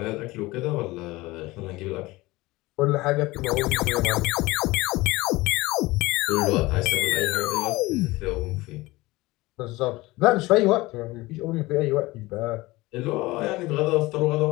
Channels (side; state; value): right; quieter; 20.4 dB